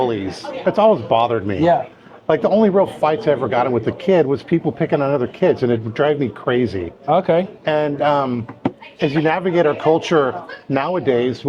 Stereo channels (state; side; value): identical; both; correlation 1.00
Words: It's always bothered me. Yeah. Like the only real fights I ever got in with a kid was people picking on other kids, and it would drive me crazy. Okay. And as you navigate our culture nowadays,